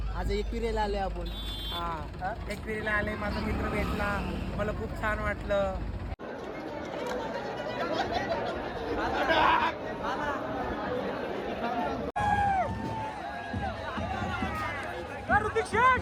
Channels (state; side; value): identical; both; correlation 1.00